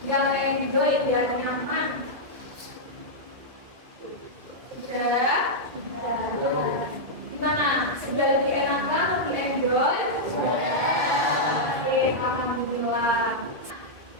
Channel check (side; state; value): left; late; 2.4 ms